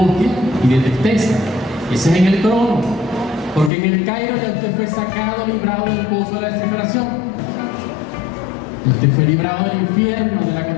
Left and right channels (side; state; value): right; drops out; at 3.7 s